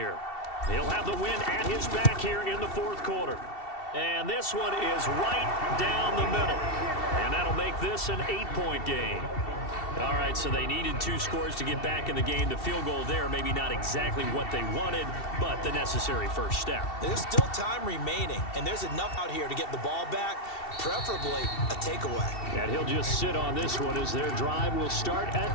He'll have the win at his back here in the 4th quarter. And this one is right down the middle. And that'll make this an 8-point game. All right, so they needed 2 scores to get back in the game. The field goal there, maybe not exactly what they wanted, but the necessary first step. There's still time remaining, and there's enough out here to get the ball back, preferably a takeaway. And he'll just sit on this one as their drive will start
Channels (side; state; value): right; late; 2.7 ms